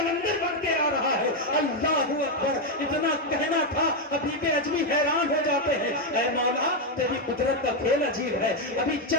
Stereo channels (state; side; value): normal; both; correlation 0.04